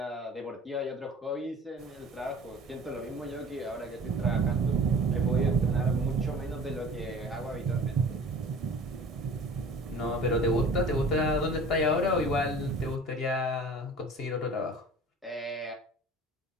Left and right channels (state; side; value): normal; both; correlation 0.43